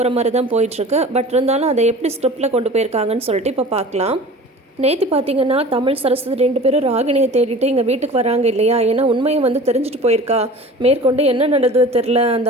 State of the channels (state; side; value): normal; both; correlation 0.40